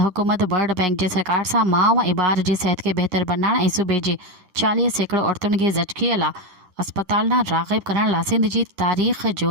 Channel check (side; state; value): left; late; 10 ms